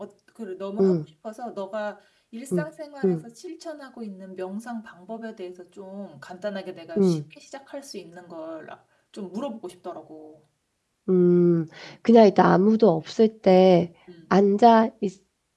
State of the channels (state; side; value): identical; both; correlation 1.00